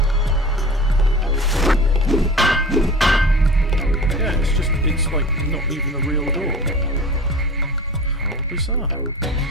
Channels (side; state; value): both; normal; correlation 0.38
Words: Yeah, it's like not even a real door. How bizarre.